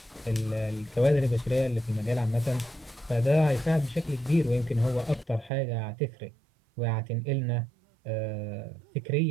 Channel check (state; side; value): drops out; left; at 5.5 s